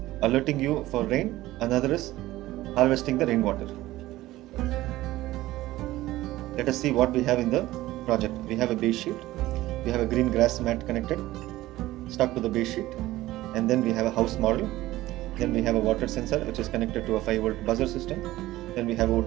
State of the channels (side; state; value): left; quieter; 16.6 dB